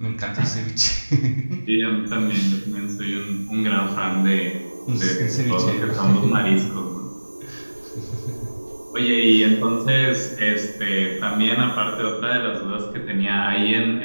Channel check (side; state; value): both; inverted; correlation -1.00